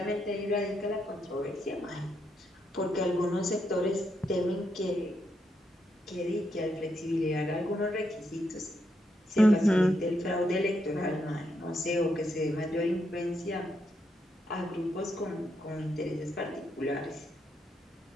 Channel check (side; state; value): both; normal; correlation 0.80